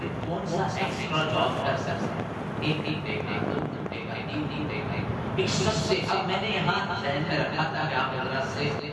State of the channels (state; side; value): identical; both; correlation 1.00